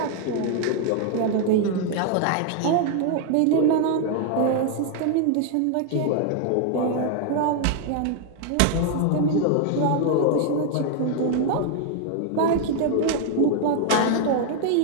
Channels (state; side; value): different; both; correlation 0.00